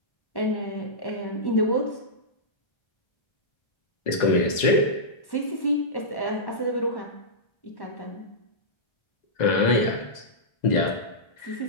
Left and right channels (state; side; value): late; right; 2.0 ms